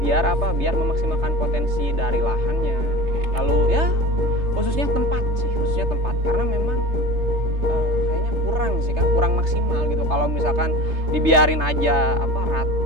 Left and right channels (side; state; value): left; late; 3.3 ms